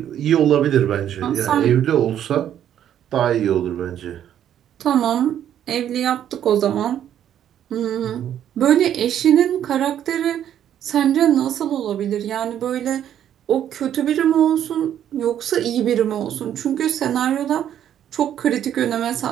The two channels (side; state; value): left; quieter; 10.3 dB